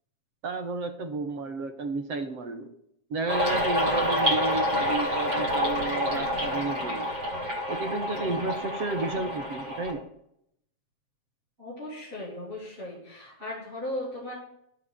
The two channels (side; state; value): left; late; 7.4 ms